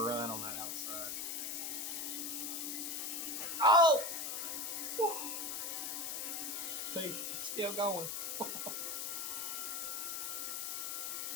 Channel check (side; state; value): left; noise; hiss, 2 dB below the sound